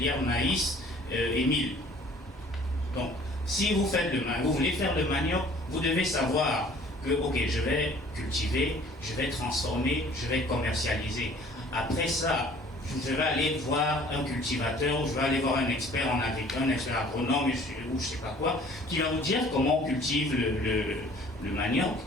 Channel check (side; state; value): both; normal; correlation 0.53